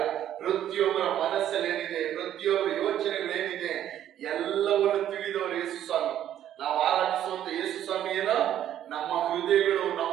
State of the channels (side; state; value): left; quieter; 11.1 dB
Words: ಪ್ರತಿಯೊಬ್ಬರ ಮನಸ್ಸಲ್ಲಿ ಏನಿದೆ, ಪ್ರತಿಯೊಬ್ಬರ ಯೋಚನೆಗಳೇನಿದೆ ಎಲ್ಲವನ್ನು ತಿಳಿದವರು ಯೇಸು ಸ್ವಾಮಿ. ನಾವು ಆರಾಧಿಸುವಂತ ಯೇಸು ಸ್ವಾಮಿ ನಮ್ಮ ಹೃದಯಗಳು,